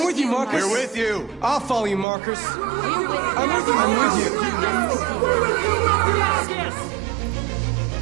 with you, Marcus. We're with you. I'll follow you, Marcus. We're with you. I'm with you. I'm with you. I'm with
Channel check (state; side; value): drops out; left; at 2.1 s